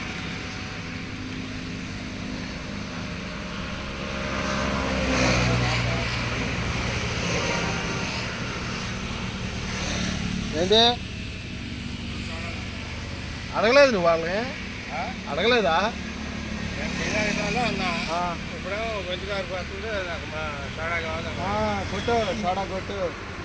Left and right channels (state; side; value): identical; both; correlation 1.00